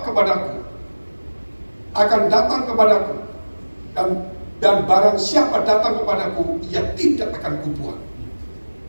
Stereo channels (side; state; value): both; inverted; correlation -1.00